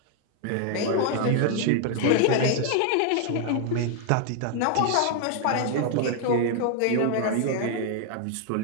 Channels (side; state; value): both; different; correlation 0.00